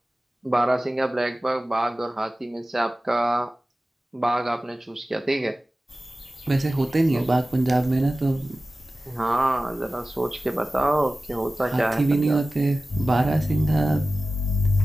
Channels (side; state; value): both; normal; correlation 0.96